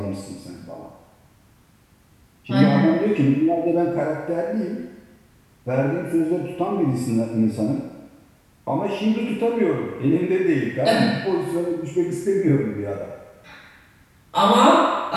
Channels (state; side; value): identical; both; correlation 1.00